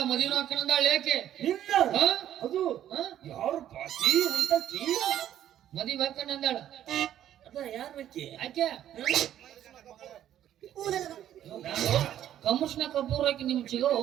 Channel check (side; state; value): left; quieter; 11.3 dB